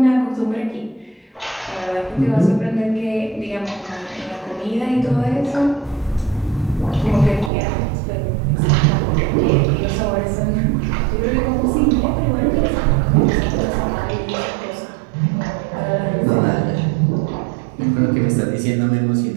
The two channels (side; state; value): left; drops out; at 7.5 s